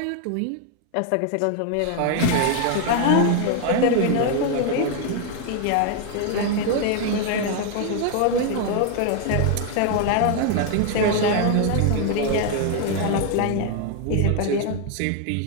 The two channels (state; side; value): different; both; correlation 0.01